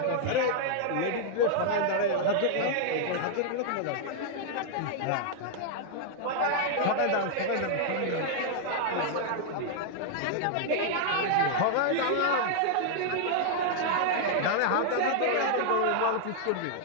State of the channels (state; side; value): different; both; correlation -0.01